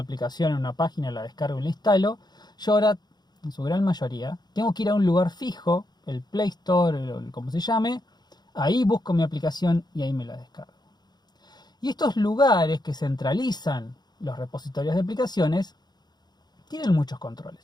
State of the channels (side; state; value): right; late; 0.20 ms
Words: en una página, la descargo y la instalo, yo ahora, en su gran mayoría, tengo que ir a un lugar fijo, el Play Store, o como se llame, ahí busco mi aplicación y ahí me la descargo. Y estos lugares que centralizan los repositorios de aplicaciones tienen muchos controles.